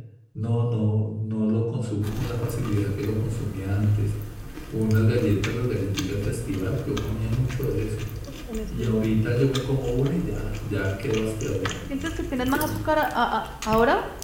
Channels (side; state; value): both; identical; correlation 1.00